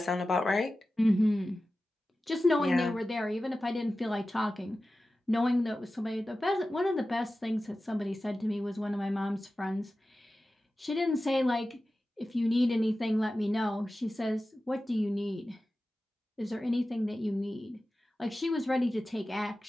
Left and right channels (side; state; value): both; normal; correlation 0.94